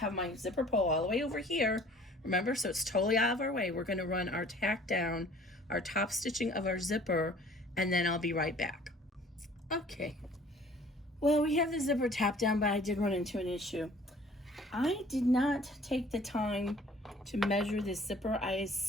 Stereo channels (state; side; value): normal; both; correlation 0.53